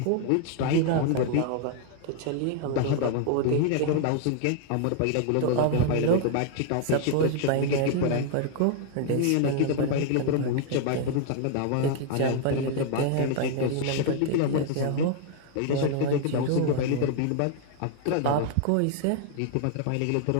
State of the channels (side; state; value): both; different; correlation 0.00